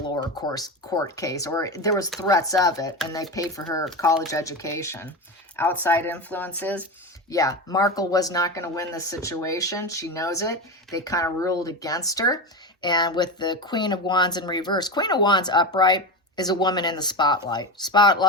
lower court case, or there was threats of it, and they paid for her college education. Outside influences, yeah, Markle was not going to win this situation. She knows it. They kind of ruled against her. And with the Queen of Wands in reverse, Queen of Wands upright is a woman in the spotlight.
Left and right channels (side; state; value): both; normal; correlation 0.21